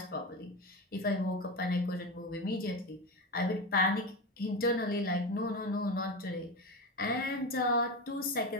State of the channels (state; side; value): normal; both; correlation 0.20